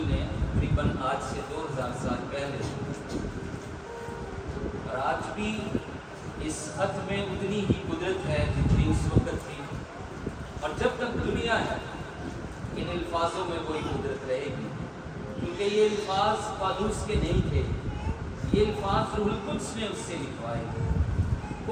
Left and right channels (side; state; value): both; identical; correlation 1.00